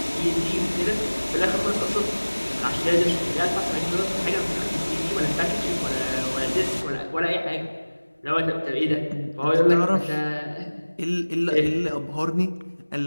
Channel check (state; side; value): inverted; both; correlation -1.00